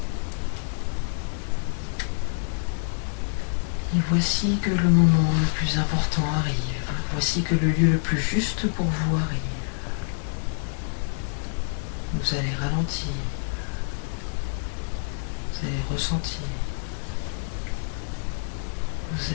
Et voici que le moment le plus important arrive. Voici que le lieu le plus juste pour vous arrive. Vous allez ralentir. Vous allez ressentir. Vous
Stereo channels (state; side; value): silent; right; digital silence